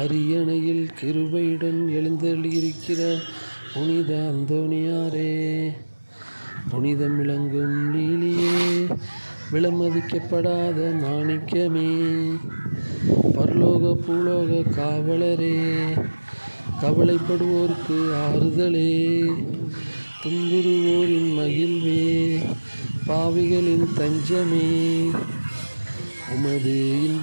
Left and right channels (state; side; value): inverted; both; correlation -1.00